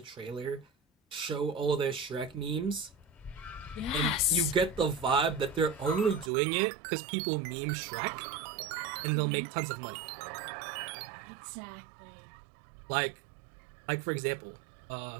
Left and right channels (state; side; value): drops out; left; at 6.3 s